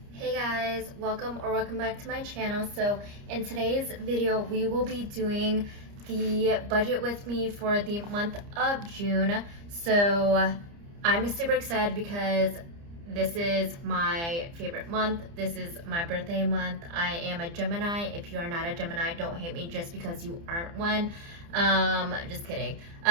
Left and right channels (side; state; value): left; late; 30 ms